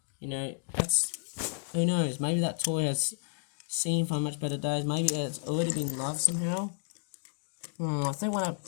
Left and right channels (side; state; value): right; silent; digital silence